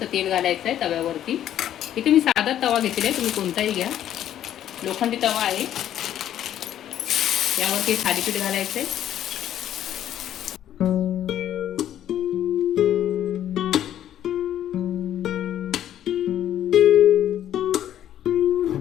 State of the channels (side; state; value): right; quieter; 11.2 dB